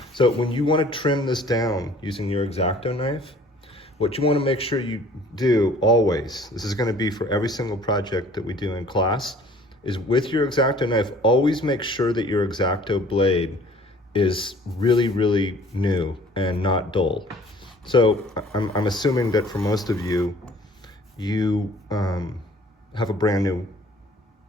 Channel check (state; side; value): normal; both; correlation 0.53